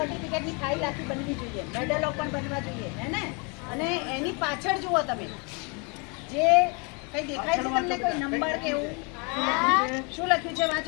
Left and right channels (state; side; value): quieter; right; 32.7 dB